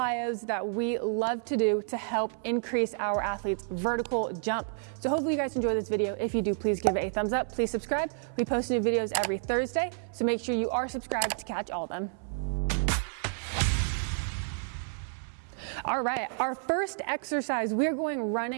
that we love to do to help increase our athletes' vertical jump. So hopefully you guys enjoy this video. If you do, please give it a thumbs up. Please subscribe. We post new videos every Thursday, so make sure you are subscribed to catch all of them. All right, our first exercise, we're going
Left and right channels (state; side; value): silent; left; 58 dB below the other